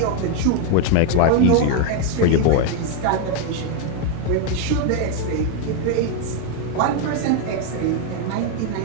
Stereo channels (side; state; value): both; different; correlation 0.01